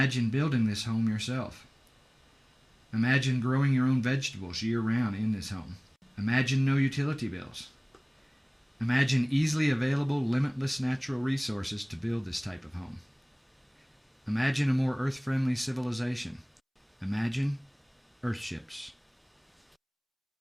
building this home yourself. Imagine growing your own vegetables year-round in this home. Imagine no utility bills. Imagine easily available, limitless natural resources to build this type of home. Imagine a more earth-friendly civilization. Imagine Earthships.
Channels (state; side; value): identical; both; correlation 1.00